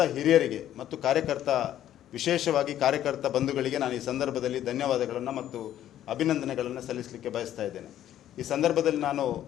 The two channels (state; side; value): quieter; right; 11.8 dB